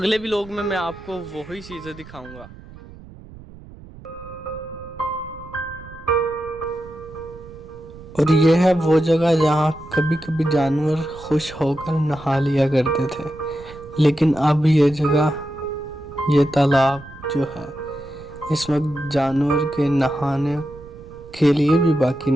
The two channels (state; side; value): noise; right; rumble, 18 dB below the sound